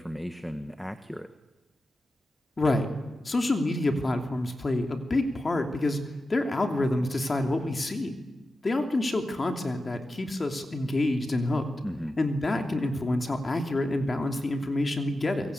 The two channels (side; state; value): both; normal; correlation 0.91